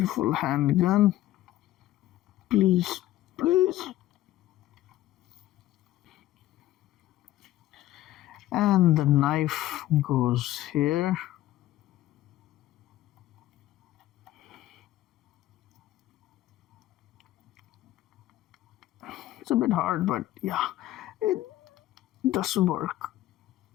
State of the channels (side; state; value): right; quieter; 14.7 dB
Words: handgun. Please, please. And the knife goes here. It's a bit hard, but yeah, it does work.